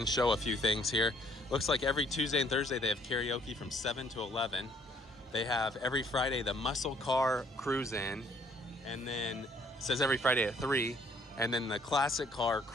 show a few things here. Looks like every Tuesday and Thursday they have karaoke from 7 to 11. They have every Friday the muscle car cruise in, and then it says every Friday at 3, and then the classic car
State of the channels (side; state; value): both; normal; correlation 0.62